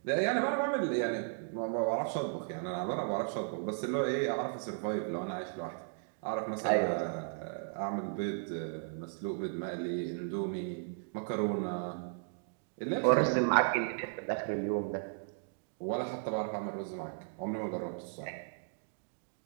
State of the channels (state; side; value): silent; left; digital silence